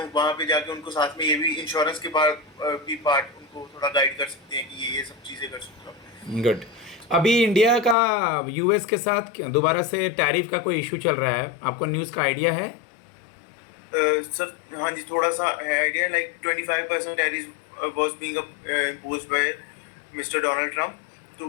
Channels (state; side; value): drops out; right; at 8.0 s